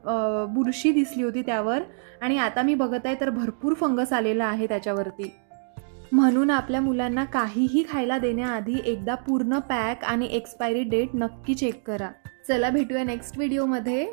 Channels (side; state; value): left; silent; digital silence